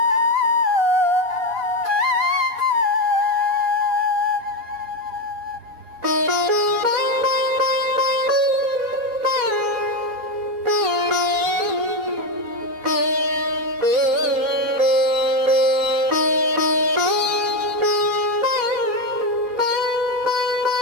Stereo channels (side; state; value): left; late; 4.0 ms